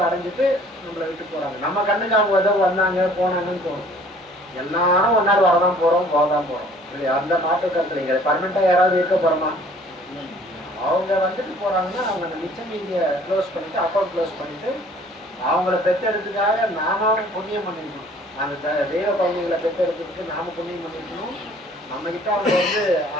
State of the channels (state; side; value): normal; both; correlation 0.54